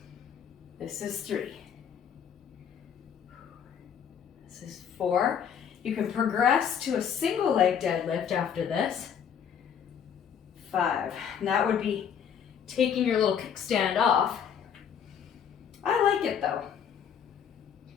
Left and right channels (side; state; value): right; quieter; 8.0 dB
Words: This is 3. This is 4. You can progress to a single leg deadlift after this. 5. And that would be taking your little kickstand off. I like it though.